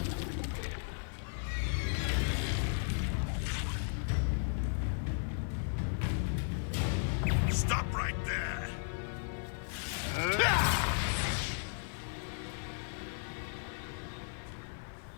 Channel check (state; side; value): silent; right; 54 dB below the other